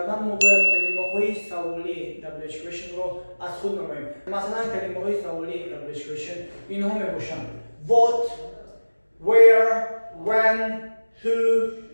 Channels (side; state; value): both; inverted; correlation -1.00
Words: ما باید کلمه‌های سوالی WH question رو از خود نماییم. مثلا کلمه‌های سوالی WH question اینها میباشند: what, where, when, who,